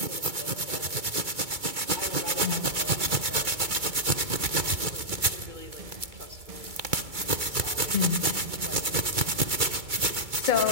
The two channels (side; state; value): left; late; 2.3 ms